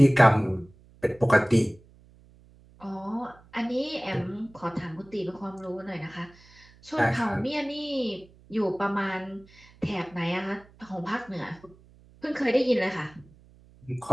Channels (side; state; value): right; noise; hum, 26 dB below the sound